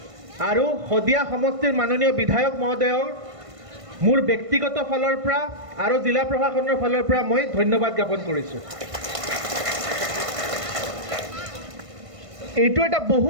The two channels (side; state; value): left; late; 1.5 ms